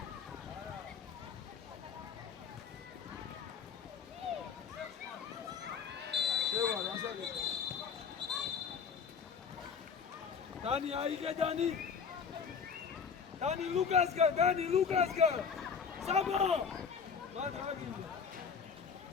Dani, aige Dani! Dani Lucasga! Sabo! Ma dragi!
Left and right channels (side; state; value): right; quieter; 6.3 dB